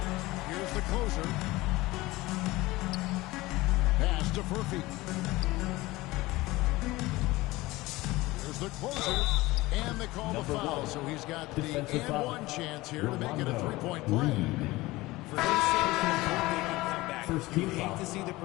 Here's the closer. Pass to Furphy. Here's the closer. And they call the foul, so he's got the and-one chance here to make it a 3-point play. For his sake, they can come back. You hate to see the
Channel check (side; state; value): right; quieter; 19.8 dB